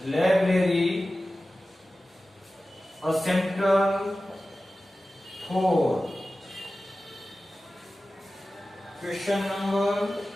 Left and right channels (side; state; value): both; normal; correlation 0.95